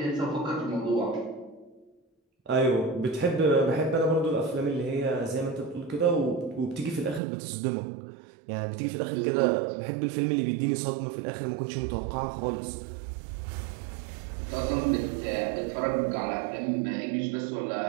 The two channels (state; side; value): drops out; left; at 7.2 s